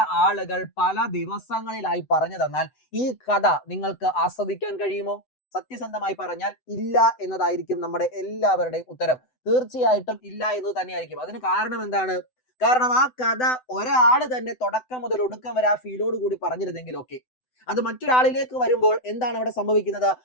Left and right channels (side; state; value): right; late; 7.9 ms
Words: ആളുകൾ പല ദിവസങ്ങളിലായി പറഞ്ഞു തന്നാൽ ഈ കഥ നിങ്ങൾക്ക് ആസ്വദിക്കാൻ കഴിയുമോ? സത്യസന്ധമായി പറഞ്ഞാൽ ഇല്ല എന്നതായിരിക്കും നമ്മുടെ എല്ലാവരുടെയും ഉത്തരം. തീർച്ചയായിട്ടും ഇല്ല എന്ന് തന്നെയായിരിക്കും. അതിന് കാരണം എന്താണ്? കാരണം ആ കഥ ഒരാൾ തന്നെ തുടക്കം മുതൽ ഒടുക്കം വരെ ആ ഫീലോട് കൂടി പറഞ്ഞിരുന്നെങ്കിൽ ഓക്കെ. അത് മറ്റൊരാളിലേക്ക് വരുമ്പോൾ എന്താണ് അവിടെ സംഭവിക്കുന്നത്?